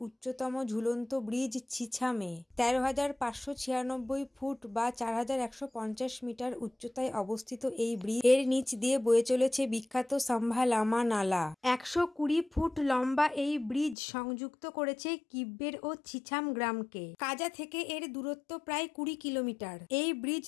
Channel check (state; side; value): drops out; right; at 14.0 s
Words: উচ্চতম ঝুলন্ত ব্রিজ ছিছামে ১৩,৫৯৬ ফুট বা ৪,১৫০ মিটার উচ্চতায় অবস্থিত এই ব্রিজ এর নিচ দিয়ে বয়ে চলেছে বিখ্যাত সাম্ভা-লামা নালা। ১২০ ফুট লম্বা এই ব্রিজ সংযুক্ত করেছে কিব্বের ও ছিছাম গ্রামকে। কাজা থেকে এর দূরত্ব প্রায় ২০ কিলোমিটার। এই ব্রিজ